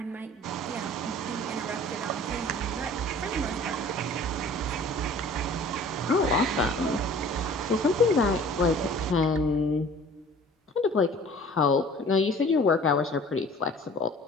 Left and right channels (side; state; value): both; normal; correlation 0.47